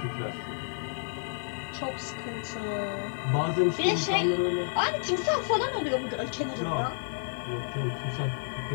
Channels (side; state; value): right; silent; 58 dB below the other